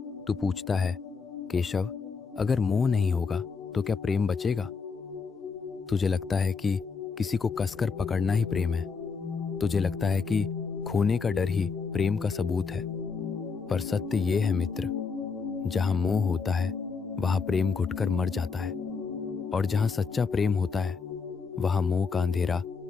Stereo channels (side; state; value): right; quieter; 5.1 dB